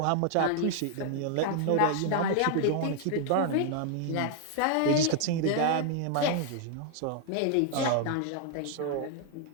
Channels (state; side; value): different; both; correlation 0.00